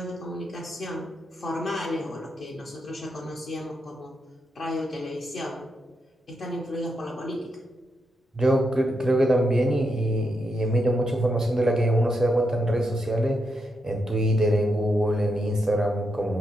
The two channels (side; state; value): both; normal; correlation 0.83